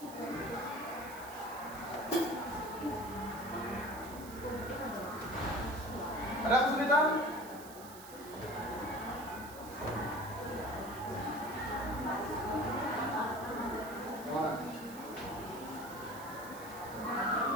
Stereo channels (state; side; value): noise; right; hiss, 16 dB below the sound